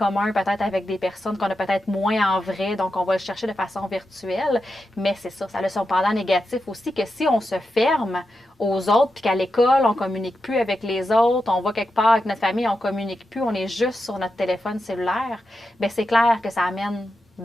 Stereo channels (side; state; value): both; normal; correlation 0.88